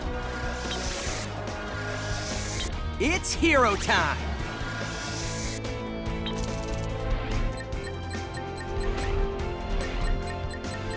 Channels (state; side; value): identical; both; correlation 1.00